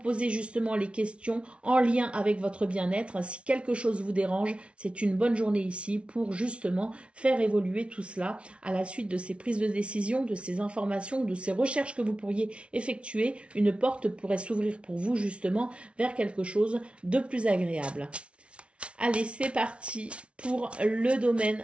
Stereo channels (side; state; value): left; late; 0.060 ms